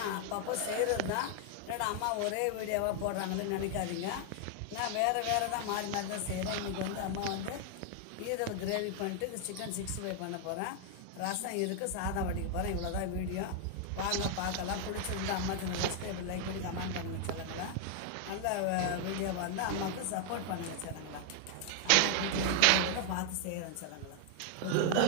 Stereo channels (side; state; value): both; different; correlation 0.00